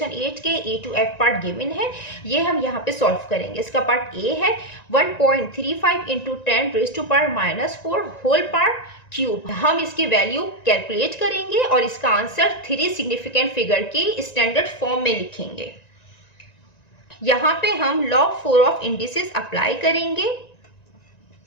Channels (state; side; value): late; right; 1.9 ms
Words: 8 के A to F part given है, ये हम यहाँ पे सॉल्व करेंगे। इसका पार्ट A है 1.35 इंटू 10⁻⁻⁴ होल पावर क्यूब। हम इसकी वैल्यू कैलकुलेट करेंगे और इसका आंसर 3 सिग्निफिकेंट फिगर के स्टैंडर्ड फॉर्म में लिखेंगे। यहाँ पे हम लॉग 4 ऑफ इंडिसेस अप्लाई करेंगे।